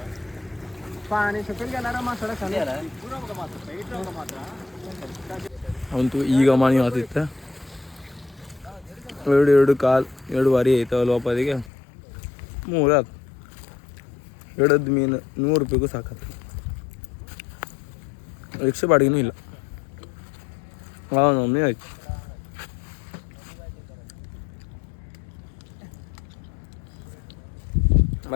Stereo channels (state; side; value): drops out; right; at 11.7 s